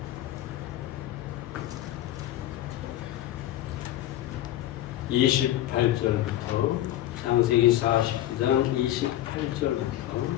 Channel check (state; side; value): quieter; right; 13.7 dB